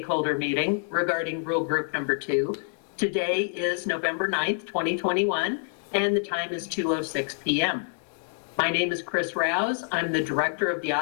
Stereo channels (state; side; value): silent; right; 60 dB below the other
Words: meeting regarding rule group number 2. Today is November 9th, 2021, and the time is 2:06 p.m. My name is Chris Rouse. I'm the director of the